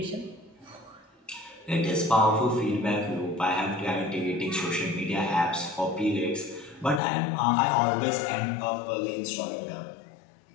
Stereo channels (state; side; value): drops out; right; at 7.0 s